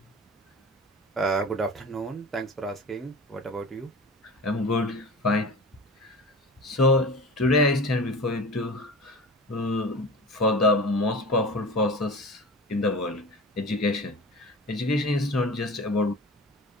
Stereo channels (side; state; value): both; normal; correlation 0.35